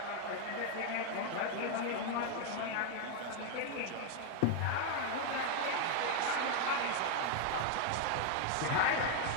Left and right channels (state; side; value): different; both; correlation 0.00